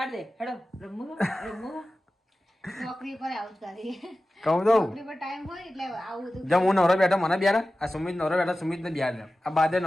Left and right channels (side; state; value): both; normal; correlation 0.95